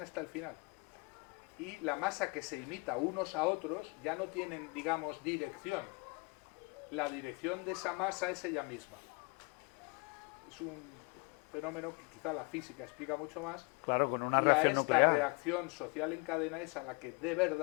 hasta el final. Y la masa que se imita unos a otros ya no tienen, digamos, dirección. La dirección de esa masa es ella misma. Es un fenómeno que quizá la física explica mucho más. Claro, con una y a reacción esta nuclear. reacción social en cadena es a la que de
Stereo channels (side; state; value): right; quieter; 29.7 dB